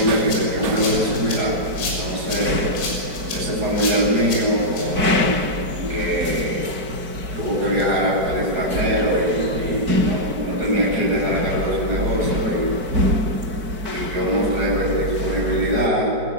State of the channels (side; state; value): left; late; 4.6 ms